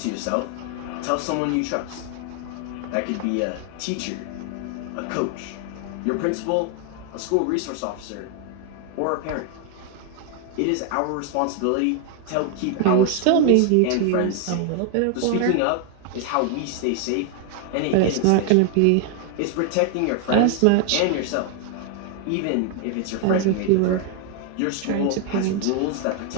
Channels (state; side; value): different; both; correlation 0.00